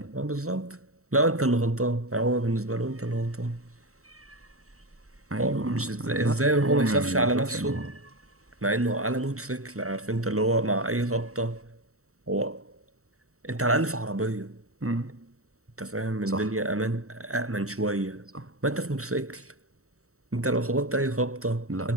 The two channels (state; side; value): late; left; 0.64 ms